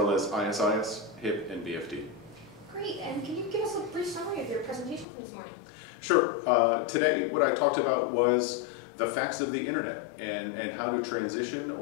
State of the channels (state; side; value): drops out; right; at 5.1 s